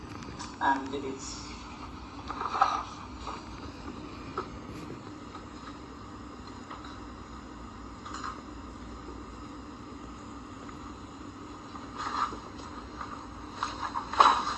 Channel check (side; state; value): both; identical; correlation 1.00